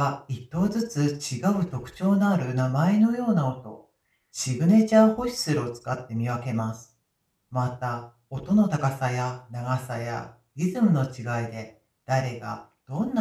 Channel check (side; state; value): both; identical; correlation 1.00